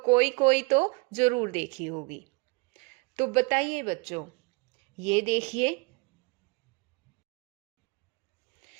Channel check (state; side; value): quieter; left; 29.3 dB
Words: कोई कोई तो जरूर देखी होगी। तो बताइए बच्चों, ये देखिए,